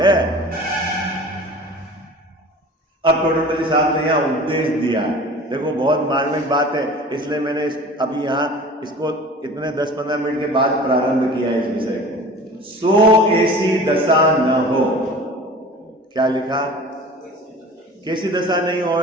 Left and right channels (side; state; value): both; normal; correlation 0.40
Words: अब टोडरमल साहब ने यहाँ उपदेश दिया। देखो बहुत मार्मिक बात है, इसलिए मैंने अभी यहाँ इसको इतने 10-15 मिनट के बाद प्रारंभ किया है इस विषय को। सो ऐसी दशा न हो। क्या लिखा? कैसी दशा नहीं